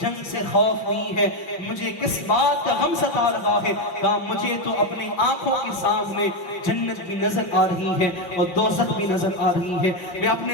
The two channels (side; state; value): right; late; 5.5 ms